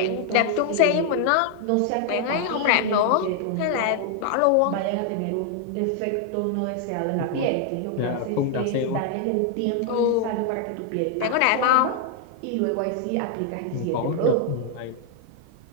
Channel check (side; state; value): both; different; correlation 0.00